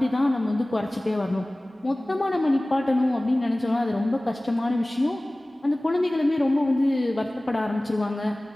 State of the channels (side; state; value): both; normal; correlation 0.98